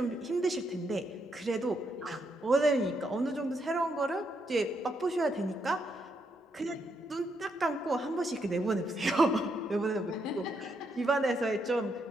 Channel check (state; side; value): normal; both; correlation 0.78